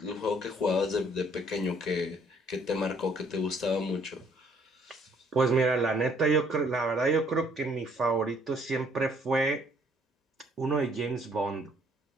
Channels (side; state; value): both; normal; correlation 0.63